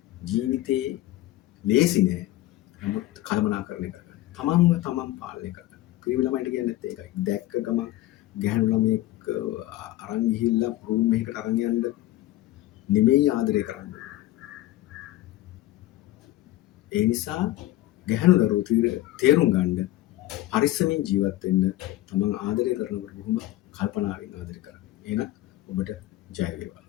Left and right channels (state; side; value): quieter; right; 15.8 dB